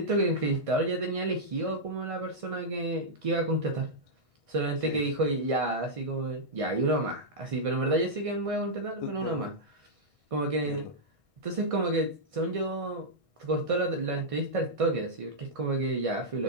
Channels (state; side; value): late; left; 1.6 ms